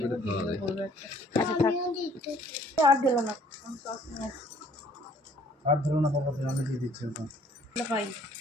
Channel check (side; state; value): both; normal; correlation 0.58